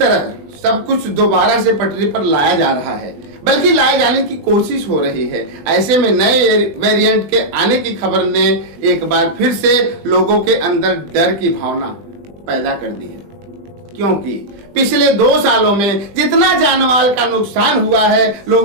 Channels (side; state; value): left; late; 20 ms